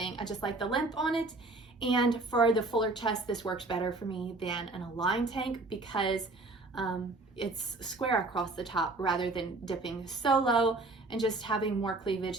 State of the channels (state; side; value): quieter; left; 3.2 dB